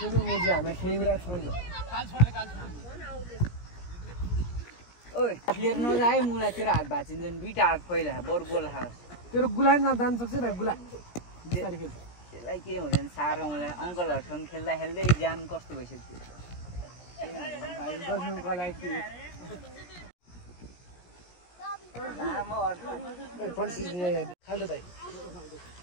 मुजी हामी खेलिरा छैन ओइ फेर नजाए मुला तेरो हात भाचिन्छ नि दुईटा हात फैला बर गोल खास तेरो गुलाइ जान सक्छ न गुला बिस्तारै खेल त्यसलाई के हुँदैन सारो मलाई अंकलहरुसँग खेल्दा खेल्दै ज्यान कस्तो भइसक्यो भाइ बस्नुको लागि लामो अर्थ फोन सिजन खाल्दो दाइ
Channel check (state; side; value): late; right; 17 ms